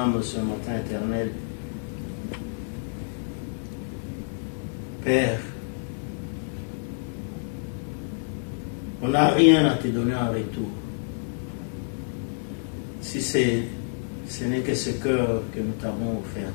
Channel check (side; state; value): right; silent; digital silence